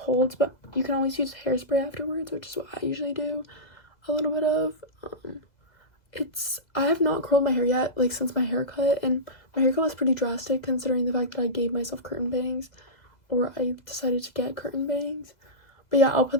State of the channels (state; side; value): late; right; 2.0 ms